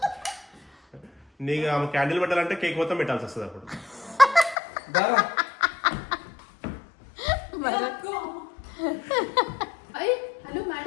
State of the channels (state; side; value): drops out; right; at 4.5 s